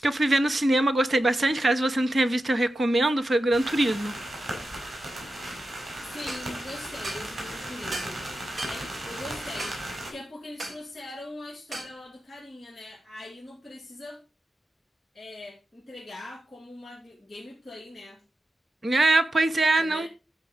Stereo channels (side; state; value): both; normal; correlation 0.91